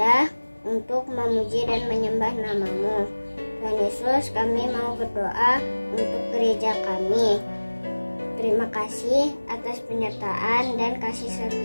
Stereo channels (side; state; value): both; inverted; correlation -1.00